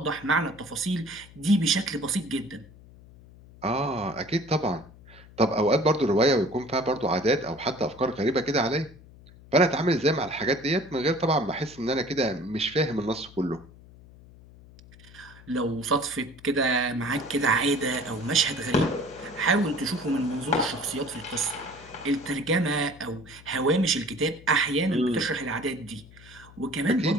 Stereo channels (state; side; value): noise; left; hum, 22 dB below the sound